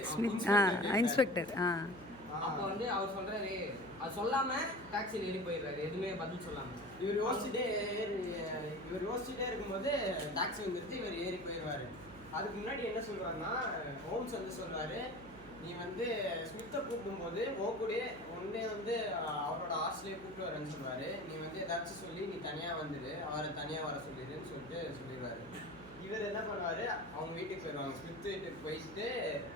இன்ஸ்பெக்டர். அப்போ வந்து அவர் சொல்றாரு, அது சொல்லாம டாக்ஸியில் ஏறி போயிடுறாரு, எதுவுமே பதில் சொல்லாம. இவர் யோசிச்சுட்டே இருக்கும்போது டாக்ஸி வந்துருச்சு, இவர் ஏறி போயிடுவாரு. அதுக்கு முன்னாடி என்ன சொல்லுவாருன்னா, ஹோம்ஸ் வந்து சொல்றாரு, நீ வந்து ஸ்மித்தை கூப்பிடும்போது ஓகூடே ஒன்னே வந்து அவரோட ஹாஸ்டலே கூப்பிட்டு வரேன்னு சொல்லுவாரு. நீ வந்து ஏதாச்சும் சொல்லி நீ தனியா வந்துடு, அவரை தனியா வர சொல்லிடுன்னு சொல்லிட்டு சொல்லிடுவாரு. இவர் என்ன பண்ணுவாரு, அவங்க வீட்டுக்கு போயிடுவாங்க. ஸ்மித் வீட்டுக்கு போயிட்டு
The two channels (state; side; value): noise; right; hum, 17 dB below the sound